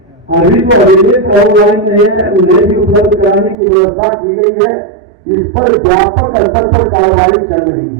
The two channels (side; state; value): left; drops out; at 3.6 s